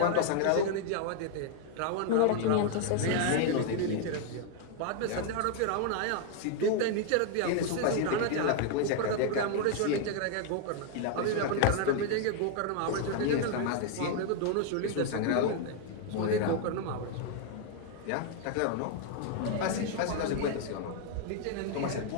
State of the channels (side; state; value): both; different; correlation 0.00